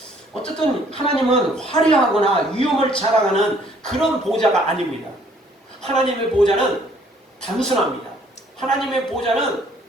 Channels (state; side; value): normal; both; correlation 0.61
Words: 어쨌든 하나님은 화려하거나 위엄을 자랑하는 그런 보좌가 아닙니다. 하나님의 보좌는 단순합니다. 하나님의 보좌는